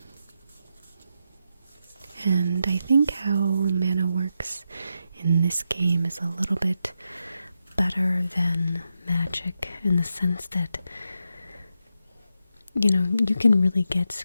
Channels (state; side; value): inverted; both; correlation -0.85